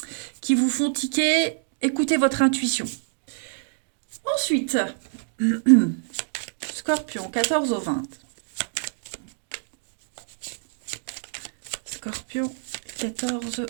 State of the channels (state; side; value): silent; left; digital silence